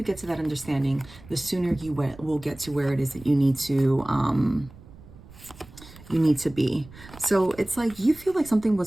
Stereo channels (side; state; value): right; noise; rumble, 20 dB below the sound